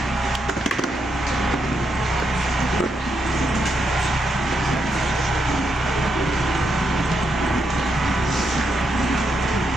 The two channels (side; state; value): both; normal; correlation 0.81